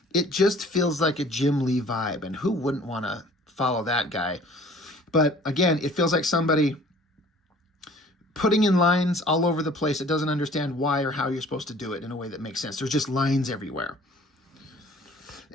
It just feels like a Jim Lee vibe, and who wouldn't want to follow that guy? But again, it feels like somebody putting in lines all over the place that doesn't understand why or how you're supposed to do it in a way that makes sense. There's just lines everywhere.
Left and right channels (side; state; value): both; normal; correlation 0.51